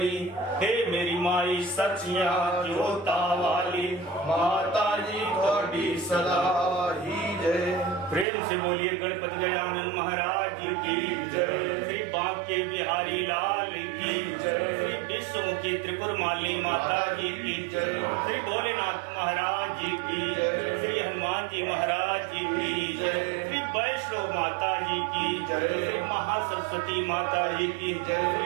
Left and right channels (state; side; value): drops out; left; at 8.2 s